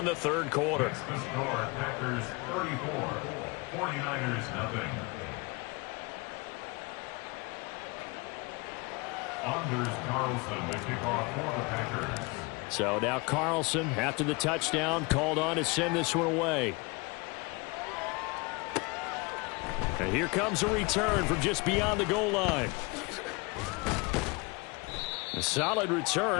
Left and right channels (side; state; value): right; quieter; 27.6 dB